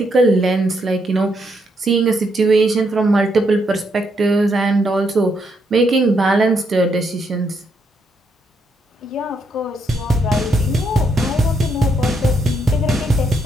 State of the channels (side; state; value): both; normal; correlation 0.77